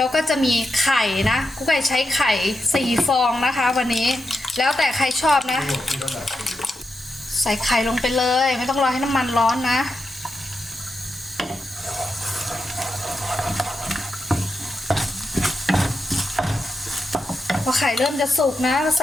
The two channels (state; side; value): normal; both; correlation 0.87